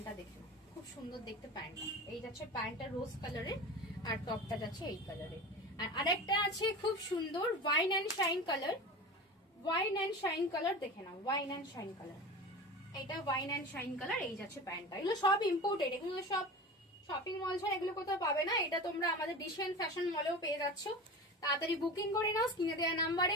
দেখে নাও, খুব সুন্দর দেখতে প্যান্টটা। এই যাচ্ছে প্যান্টটা রোজ কালারের, আর টপটা যাচ্ছে এই কালারের। আর আরেকটা আছে খুব সুন্দর wine and shine colour, wine and shine colour দেখে নাও, ওয়াইন অ্যান্ড শাইন কালার, এটা ওয়াইন অ্যান্ড শাইন কালার। এই যাচ্ছে প্যান্টটা, এগুলো সব ইম্পোর্টেড, এগুলো সব শপিং মল ছাড়া এগুলো কোথাও পাবে না। এটা তোমরা আমাদের ডিসেন ফ্যাশন মলেও পেয়ে যাচ্ছ। তাড়াতাড়ি বুকিং করে নাও, স্ক্রিনে দেওয়া নাম্বারে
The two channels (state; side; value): normal; both; correlation 0.32